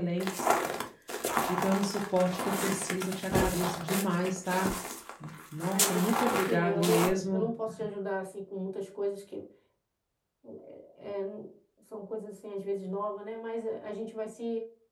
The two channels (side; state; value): both; identical; correlation 1.00